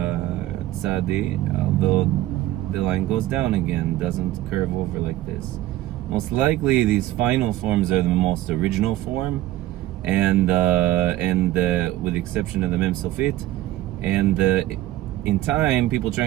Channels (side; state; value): left; quieter; 15.0 dB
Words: tsádi, although the line goes down again, doesn't curve over like this. Most likely these final forms are the most original form, and with the exception of the mem sofit, and in time people